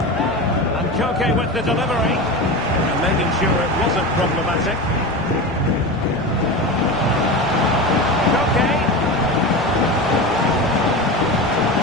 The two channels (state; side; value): noise; left; rumble, 18 dB below the sound